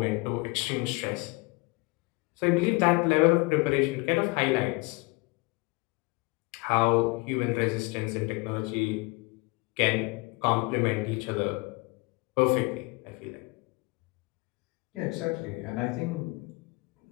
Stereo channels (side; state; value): right; quieter; 26.0 dB